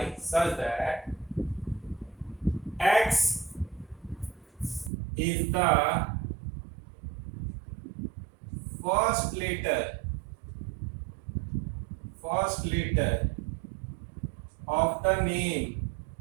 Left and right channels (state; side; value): drops out; left; at 4.9 s